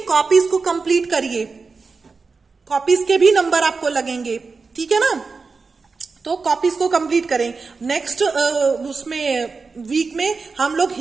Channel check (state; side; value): quieter; left; 4.5 dB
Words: Copies को कंप्लीट करिए, कॉपीज के भी नंबर आपको लगेंगे, ठीक है ना। तो कॉपीज को कंप्लीट करें। नेक्स्ट उसमें वीक में हम लोग